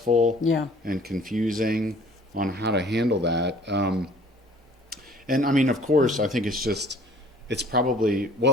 and confusing on how to handle that. And I mean, of course, I think it's probably,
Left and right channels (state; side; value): normal; both; correlation 0.52